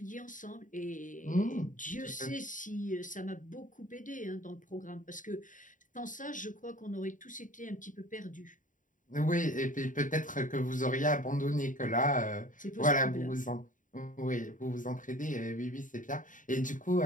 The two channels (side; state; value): right; late; 0.38 ms